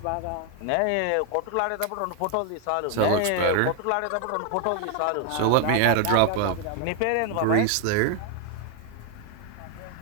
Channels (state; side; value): different; both; correlation 0.00